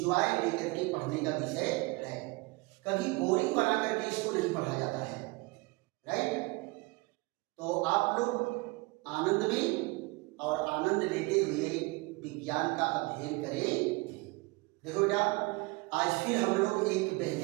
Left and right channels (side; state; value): left; quieter; 25.0 dB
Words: लेकर के पढ़ने का विषय है। कभी बोरिंग बना करके इसको नहीं पढ़ा जाता है, राइट? तो आप लोग आनंद में और आनंद लेते हुए विज्ञान का अध्ययन करें। देखो बेटा, आज फिर हम लोग एक